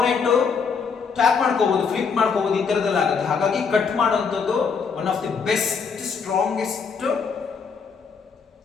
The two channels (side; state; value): right; quieter; 5.7 dB